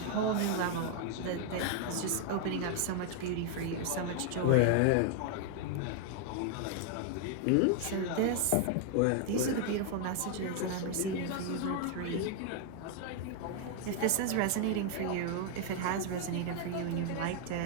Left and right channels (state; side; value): different; both; correlation 0.00